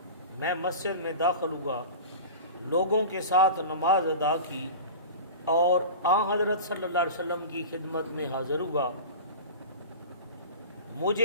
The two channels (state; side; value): inverted; both; correlation -0.34